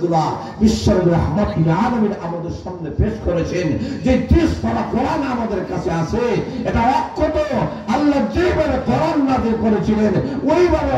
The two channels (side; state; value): both; identical; correlation 1.00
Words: বিশ্বের রাহমাতুল আলামিন আমাদের সামনে পেশ করেছেন, যে 30 পারা কোরআন আমাদের কাছে আছে, এটা অক্ষত আল্লাহ যেভাবে কোরআন নাযিল করেছিলেন ওইভাবে